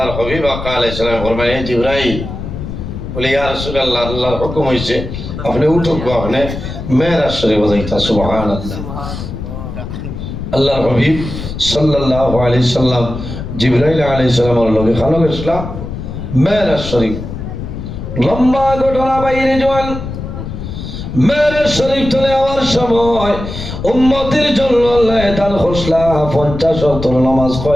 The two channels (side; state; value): left; noise; rumble, 8 dB below the sound